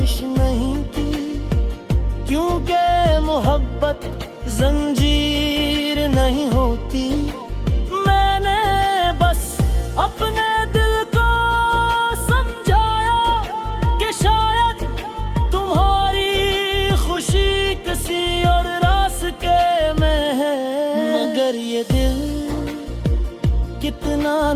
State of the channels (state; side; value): identical; both; correlation 1.00